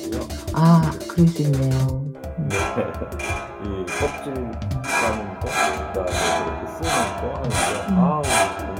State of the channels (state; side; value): identical; both; correlation 1.00